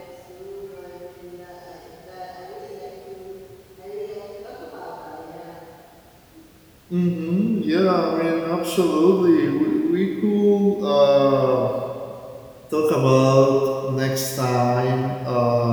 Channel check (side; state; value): both; identical; correlation 1.00